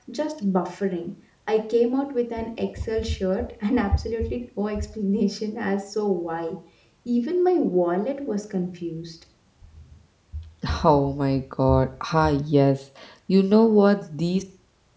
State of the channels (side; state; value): both; identical; correlation 1.00